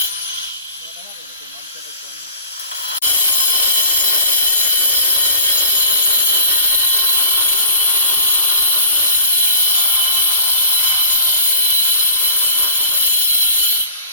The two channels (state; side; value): inverted; both; correlation -0.44